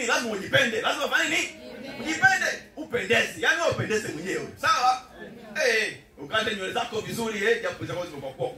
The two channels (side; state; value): both; identical; correlation 1.00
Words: lazima ujipende. Lazima ufanye nini? Ujipende, upendeze. Yaani upendeze mwenyewe. Sawa? Ukate nywele zako vizuri, japo zako zimekuwa